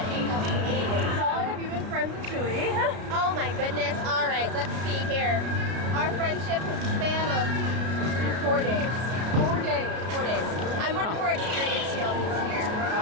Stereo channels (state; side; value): late; left; 33 ms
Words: So long have you been friends with Chewie? Oh my goodness. All right, let's see here. Our friendship has a span of 4 days. 4 days. 4 days. I'm much more experienced here.